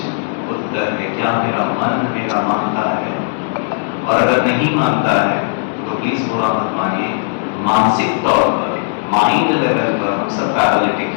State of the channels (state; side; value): silent; right; digital silence